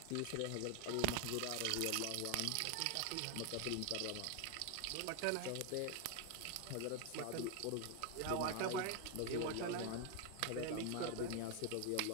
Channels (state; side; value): different; both; correlation 0.01